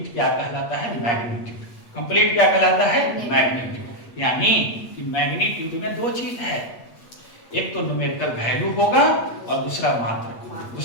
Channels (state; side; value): late; right; 8.4 ms